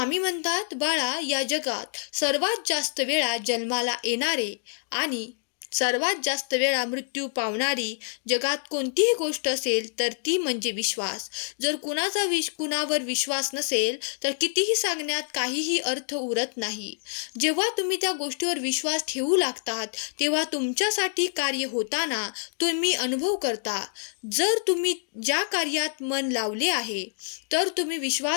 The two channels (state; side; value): silent; right; digital silence